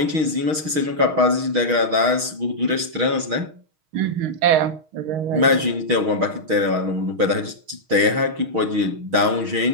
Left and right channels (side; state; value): left; late; 6.4 ms